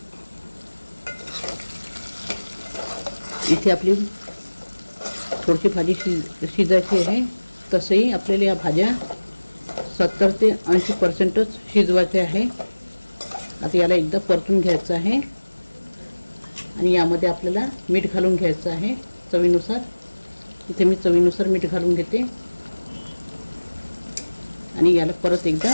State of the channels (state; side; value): inverted; both; correlation -1.00